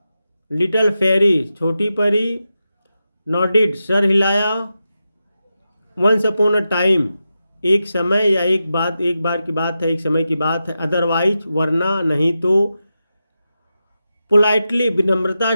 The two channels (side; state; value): both; inverted; correlation -0.90